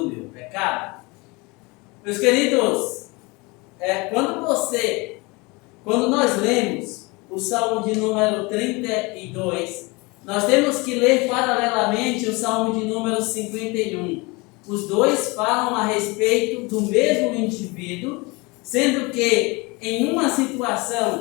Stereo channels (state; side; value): quieter; right; 25.9 dB